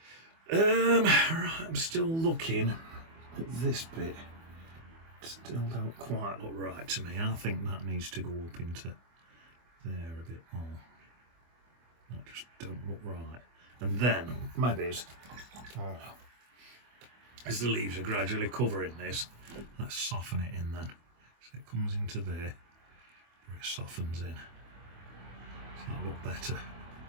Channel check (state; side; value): late; left; 24 ms